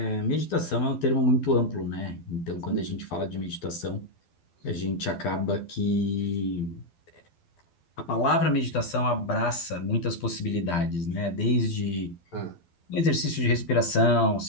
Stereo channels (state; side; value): late; right; 12 ms